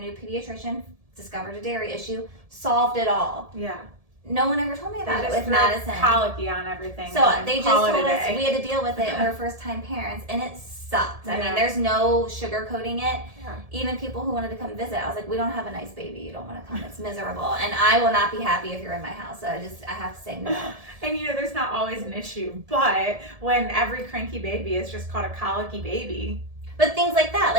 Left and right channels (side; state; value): left; late; 1.7 ms